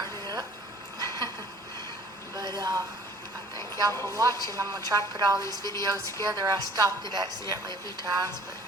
it up. But I thank y'all for watching. I'm going to try to put all these videos together. I stopped it accidentally a few times, but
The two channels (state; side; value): normal; both; correlation 0.52